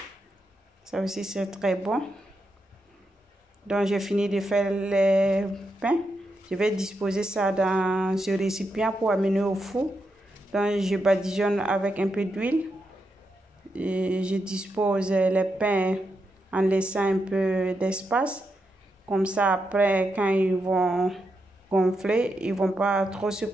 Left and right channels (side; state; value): both; normal; correlation 0.84